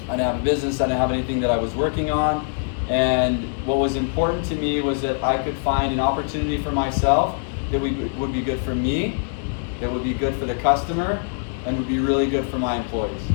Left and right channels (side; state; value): right; silent; 61 dB below the other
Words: I didn't have a business. I didn't have anything that I was working on. And what was important to me was that I could find an opportunity for myself that would be good for me, that would be good for the customer, and would be really good for my employees,